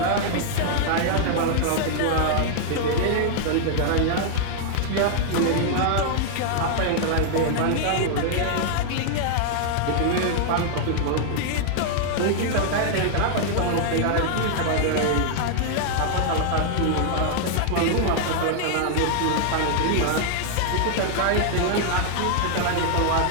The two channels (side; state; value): both; different; correlation -0.01